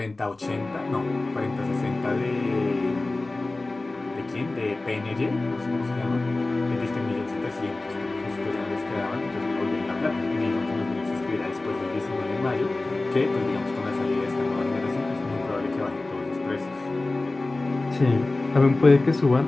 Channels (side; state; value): right; quieter; 3.1 dB